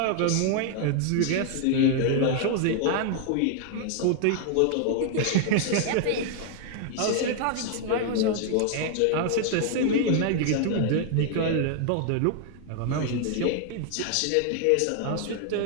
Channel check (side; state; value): both; different; correlation 0.00